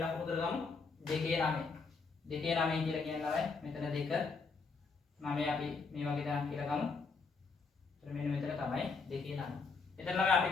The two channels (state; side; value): quieter; right; 4.6 dB